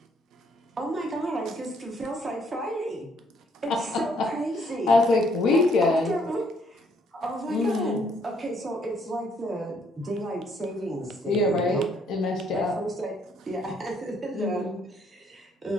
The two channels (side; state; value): both; normal; correlation 0.67